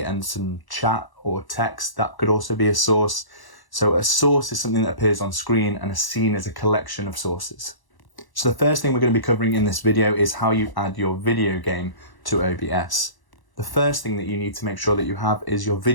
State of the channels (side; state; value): right; late; 1.0 ms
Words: and some chat or text, that could also be a source. So a source is something that appears on screen, and a scene is a collection of sources. So the first thing we're going to be covering in this video is how you add your video game to OBS. The first thing that you need to make sure that you have is your